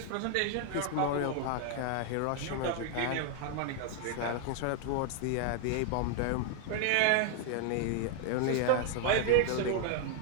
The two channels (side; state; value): both; different; correlation 0.00